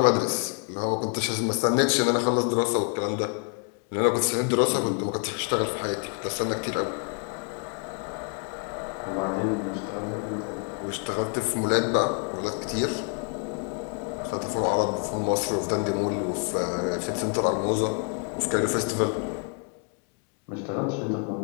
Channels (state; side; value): quieter; right; 38.3 dB